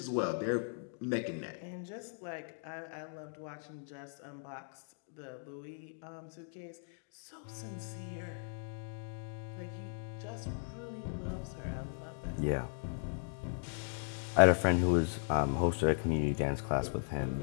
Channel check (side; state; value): right; silent; digital silence